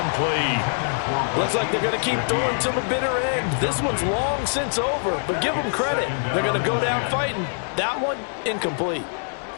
Looks like they're going to keep throwing till the bitter end. This one's long since over, but give them credit. They're going to go down fighting. That one, incomplete.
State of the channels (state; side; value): silent; right; digital silence